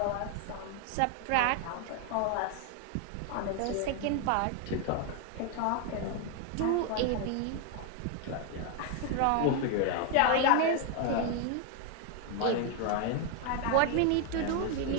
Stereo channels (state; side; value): different; both; correlation 0.01